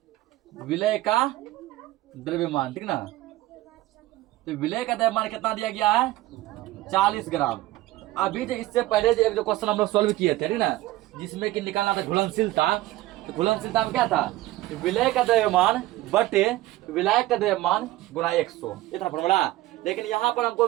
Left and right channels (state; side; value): quieter; left; 17.0 dB